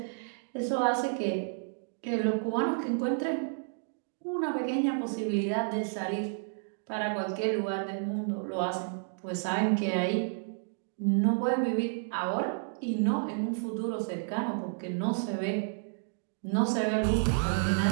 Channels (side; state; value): left; silent; digital silence